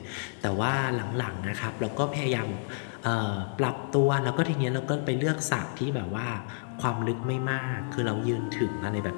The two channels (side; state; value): right; silent; digital silence